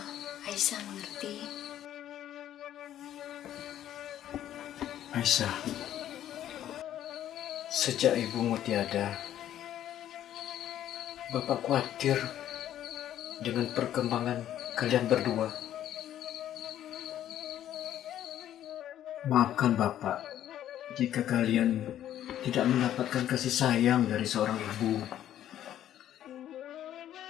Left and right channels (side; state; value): right; quieter; 11.6 dB